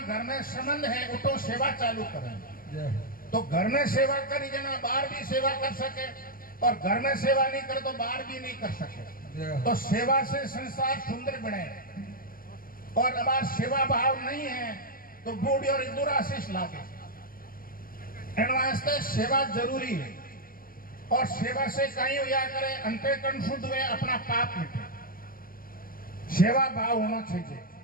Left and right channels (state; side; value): late; right; 0.42 ms